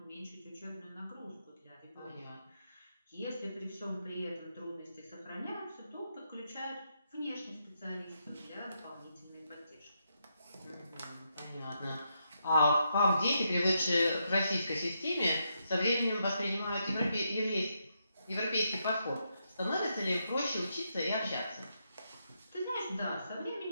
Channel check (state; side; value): inverted; both; correlation -0.81